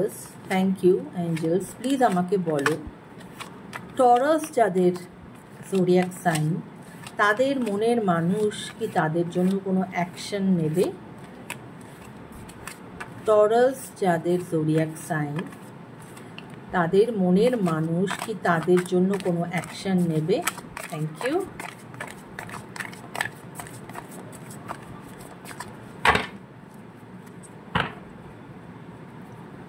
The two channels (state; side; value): identical; both; correlation 1.00